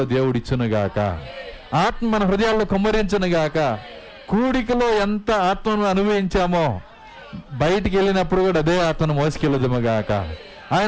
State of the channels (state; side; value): identical; both; correlation 1.00